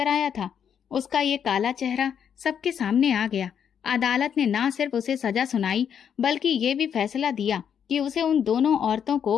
था। उसका ये काला चेहरा सबके सामने आ गया। अदालत ने ना सिर्फ उसे सजा सुनाई बल्कि ये भी फैसला दिया कि उसे उन दोनों औरतों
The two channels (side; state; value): right; quieter; 8.1 dB